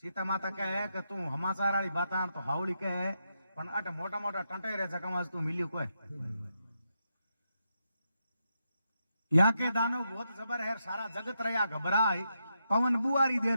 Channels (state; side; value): inverted; both; correlation -0.83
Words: सीता माता कहे कि तू हमाचार वाली बात तो हावड़ी कहे पण अट मोटा मोटा टंटे रे जगह तू मिलियो कोई यहाँ के दानव बहुत जबर है सारा जगत रहा घबराए पवन बुआरी दे